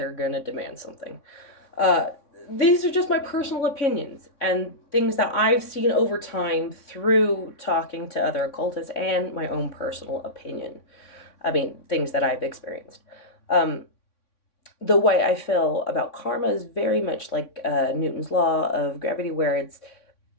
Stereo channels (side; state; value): right; late; 3.6 ms